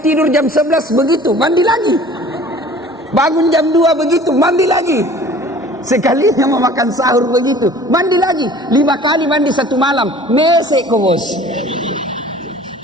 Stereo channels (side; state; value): both; normal; correlation 0.47